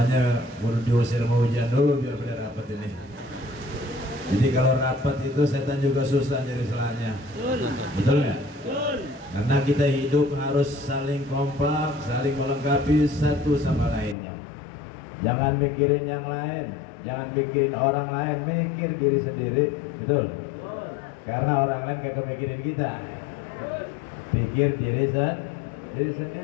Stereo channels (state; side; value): drops out; right; at 14.2 s